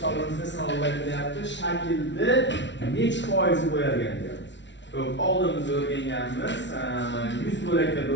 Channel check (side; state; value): right; late; 0.52 ms